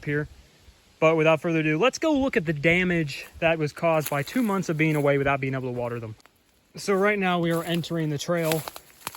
here, but without further ado, let's go look at the damage that was caused by 2 months of being away without being able to water them. So right now we are entering the trail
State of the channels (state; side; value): identical; both; correlation 1.00